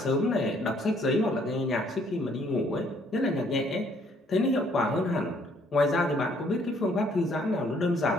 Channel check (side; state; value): both; normal; correlation 0.65